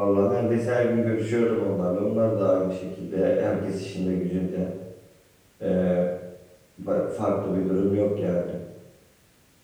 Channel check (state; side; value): identical; both; correlation 1.00